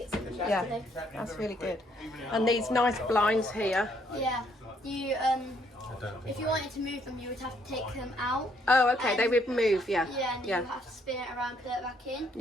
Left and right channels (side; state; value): both; normal; correlation 0.69